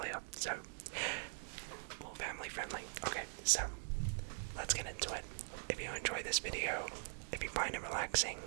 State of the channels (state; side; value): silent; left; digital silence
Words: so, well, family friendly. Okay, so, let's get into it. If you enjoy this video, if you find it relaxing,